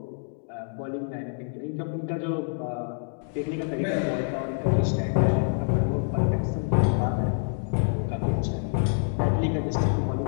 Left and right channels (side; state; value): right; silent; digital silence